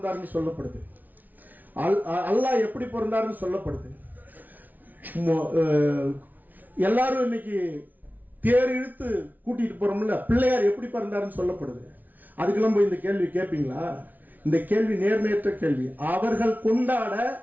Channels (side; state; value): left; late; 0.080 ms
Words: சொல்லப்படுது, அல்லாஹ் எப்படி பிறந்தாருன்னு சொல்லப்படுது. எல்லாரும் இன்னைக்கு தேர் இழுத்து கூட்டிட்டு போறோம்ல, பிள்ளையார் எப்படி பிறந்தாருன்னு சொல்லப்படுது. அதுக்கெல்லாம் போய் இந்த கேள்வி கேட்பீங்களா? இந்த கேள்வி நேர்மையற்ற கேள்வி. அவர்கள் கொண்டாட